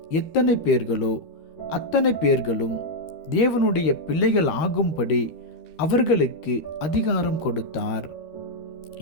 எத்தனை பேர்களோ அத்தனை பேர்களும் தேவனுடைய பிள்ளைகள் ஆகும்படி அவர்களுக்கு அதிகாரம் கொடுத்தார்.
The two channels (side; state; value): right; late; 13 ms